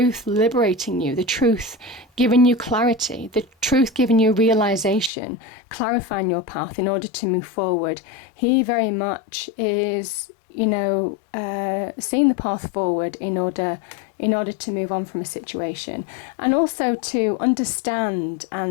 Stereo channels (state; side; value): drops out; right; at 5.1 s